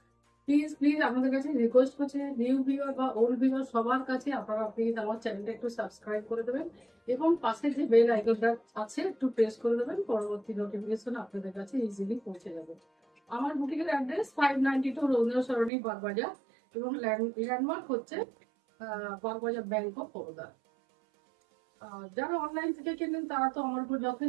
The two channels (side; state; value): left; drops out; at 15.7 s